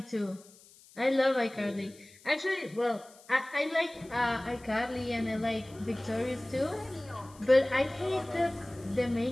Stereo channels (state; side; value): noise; left; hiss, 24 dB below the sound